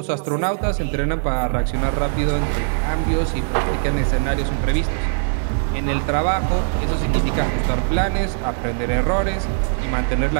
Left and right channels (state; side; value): silent; left; digital silence